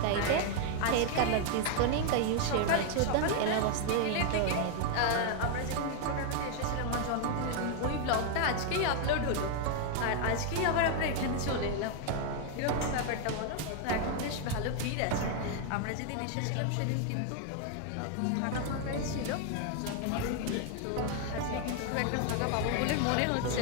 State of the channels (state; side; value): different; both; correlation 0.00